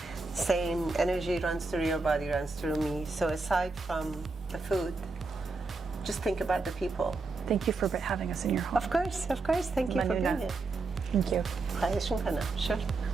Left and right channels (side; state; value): left; quieter; 3.7 dB